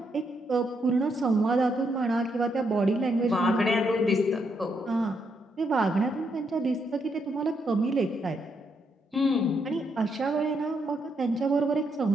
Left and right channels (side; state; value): both; normal; correlation 0.78